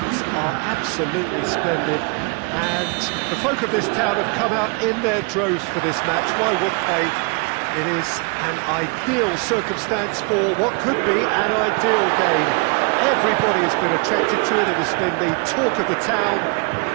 are absolutely splendid and the folk of this town have come out in their droves for this match. Why wouldn't they? It is an ideal circumstance for what could be an ideal game. Everybody has been attracted to it. It has been the talk of the town.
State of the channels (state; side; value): quieter; left; 33.5 dB